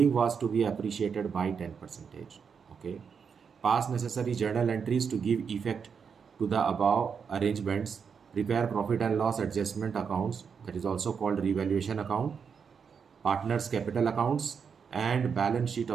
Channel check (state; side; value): quieter; left; 6.4 dB